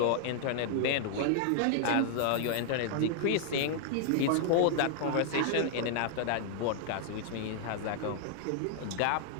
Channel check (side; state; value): both; different; correlation -0.01